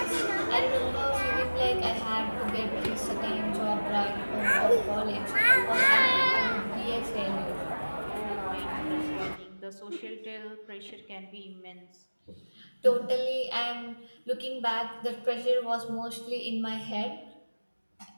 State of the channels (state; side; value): inverted; both; correlation -1.00